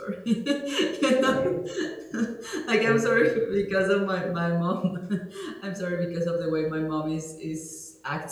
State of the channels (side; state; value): both; identical; correlation 1.00